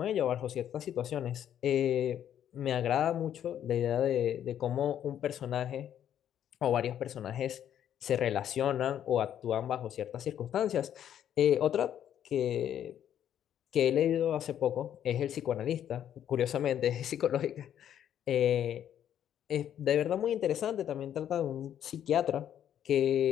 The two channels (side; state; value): right; quieter; 10.2 dB